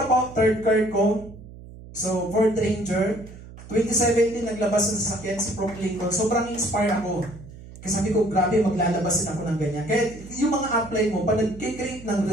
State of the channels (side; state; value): right; noise; hum, 17 dB below the sound